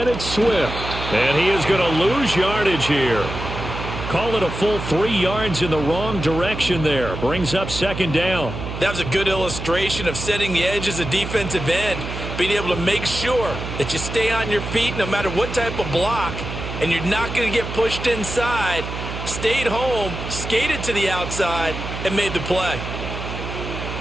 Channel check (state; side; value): noise; right; hum, 7 dB below the sound